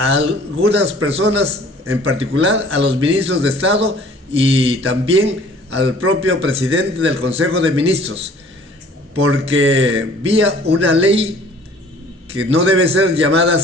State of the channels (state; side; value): normal; both; correlation 0.52